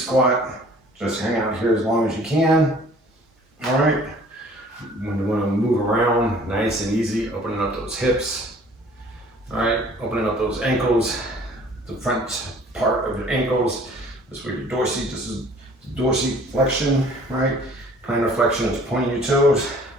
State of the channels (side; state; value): both; normal; correlation 0.52